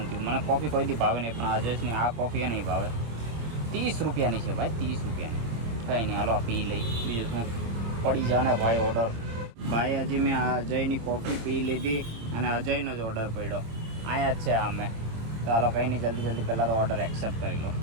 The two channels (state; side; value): late; left; 26 ms